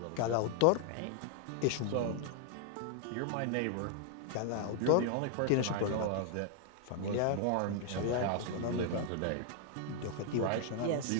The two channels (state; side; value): different; both; correlation 0.00